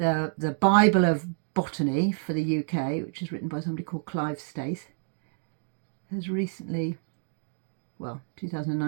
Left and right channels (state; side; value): silent; left; digital silence